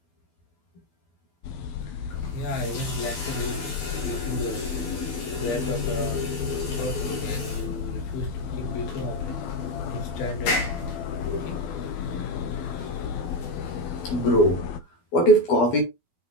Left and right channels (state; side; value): late; right; 12 ms